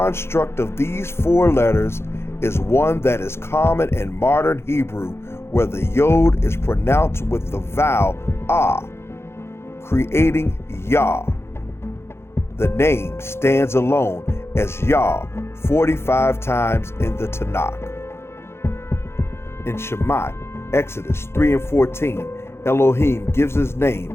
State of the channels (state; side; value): late; right; 0.12 ms